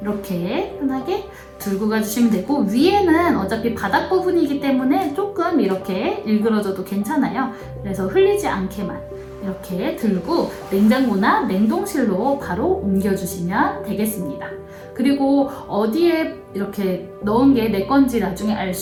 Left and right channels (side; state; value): both; identical; correlation 1.00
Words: 이렇게 편하게 들고 가주시면 되고 위에는 어차피 바닥 부분이기 때문에 조금 이렇게 일그러져도 괜찮아요. 그래서 흘리지 않게만 이렇게 들고 냉장고나 냉동실로 바로 옮겨주시면 되겠습니다. 그리고 어디에 이렇게 넣은 게 내 건지 나중에 알